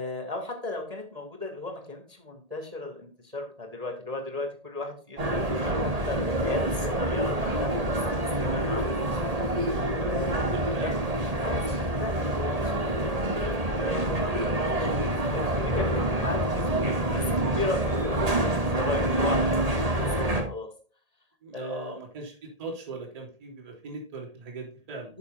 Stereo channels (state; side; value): late; left; 1.8 ms